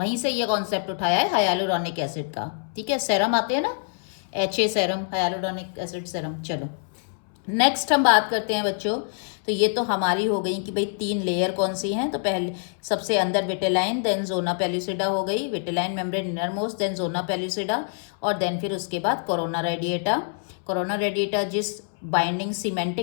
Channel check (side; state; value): right; silent; 62 dB below the other